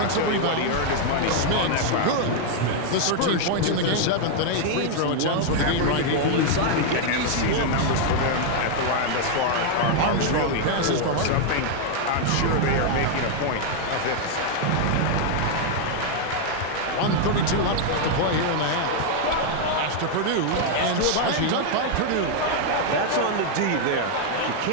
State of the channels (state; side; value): different; both; correlation 0.00